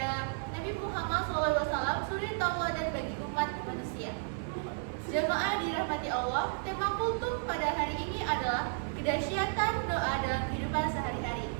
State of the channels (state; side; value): silent; left; 56 dB below the other